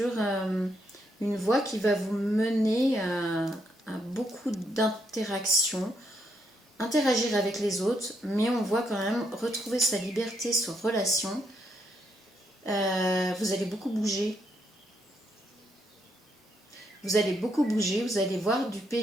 une voie qui va vous mener à beaucoup d'interactions, interagir avec les autres, mais on voit quand même retrouver sa liberté sur relation. Vous allez beaucoup bouger. Vous allez beaucoup bouger, vous allez voir du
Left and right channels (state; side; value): normal; both; correlation 0.77